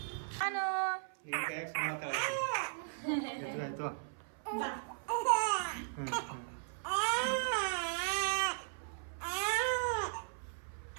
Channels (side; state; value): left; silent; 53 dB below the other